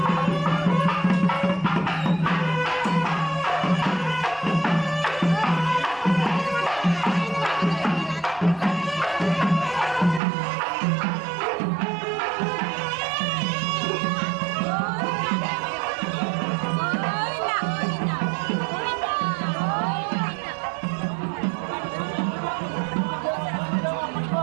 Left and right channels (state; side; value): drops out; left; at 10.2 s